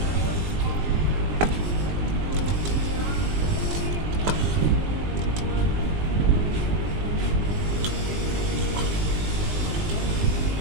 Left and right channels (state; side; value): late; left; 20 ms